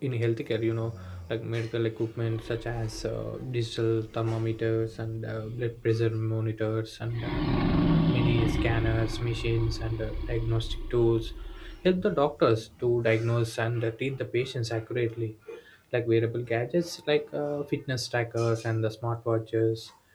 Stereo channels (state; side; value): identical; both; correlation 1.00